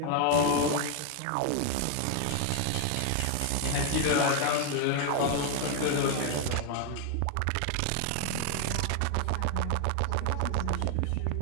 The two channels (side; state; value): both; different; correlation 0.01